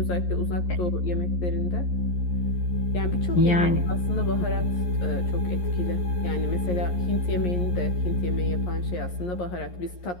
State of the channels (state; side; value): late; right; 11 ms